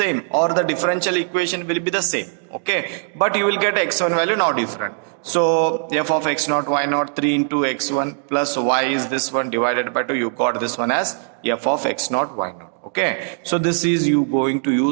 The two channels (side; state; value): left; silent; digital silence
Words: or the differential equation will be the same. Okay, but you will get x1 value now different. So f of x naught y naught 3 into x1 plus y is this one divided by 2. You got this one as f of x naught y naught. Okay, so this is you going to